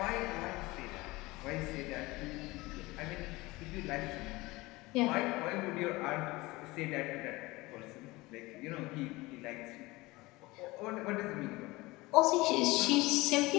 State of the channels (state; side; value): quieter; right; 21.4 dB